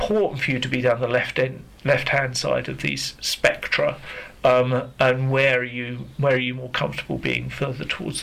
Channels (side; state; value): both; identical; correlation 1.00